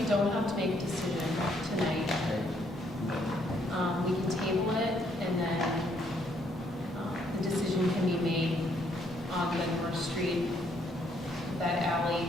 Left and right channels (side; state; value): both; normal; correlation 0.70